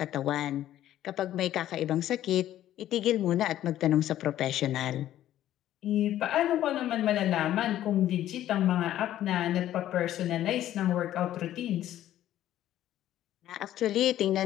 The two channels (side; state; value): right; quieter; 12.7 dB